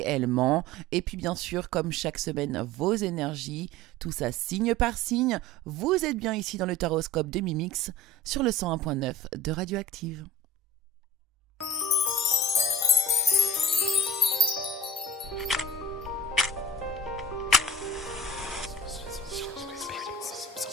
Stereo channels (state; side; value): normal; both; correlation 0.37